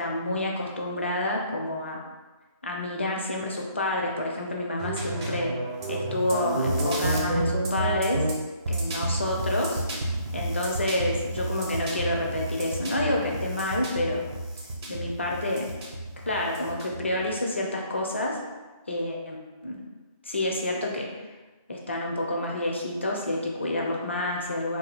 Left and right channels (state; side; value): inverted; both; correlation -0.62